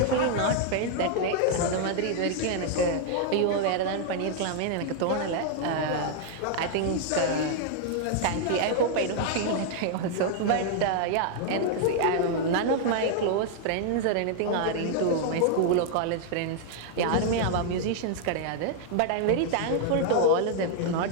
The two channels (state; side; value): different; both; correlation 0.00